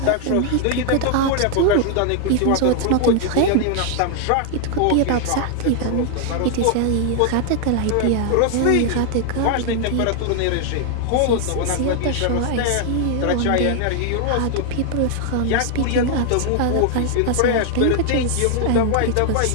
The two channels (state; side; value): different; both; correlation 0.00